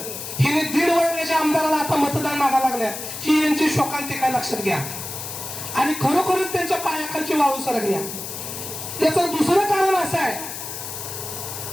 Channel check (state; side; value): noise; left; hiss, 8 dB below the sound